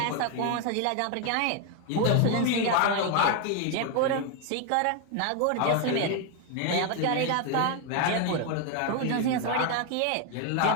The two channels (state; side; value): different; both; correlation 0.01